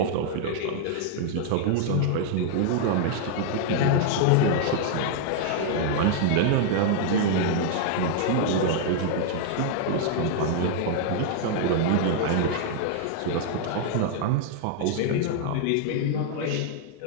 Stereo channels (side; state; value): both; different; correlation -0.01